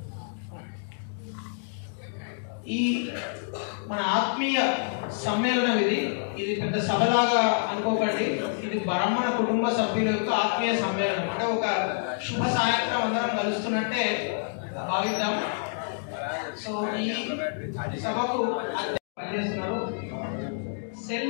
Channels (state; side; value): silent; right; digital silence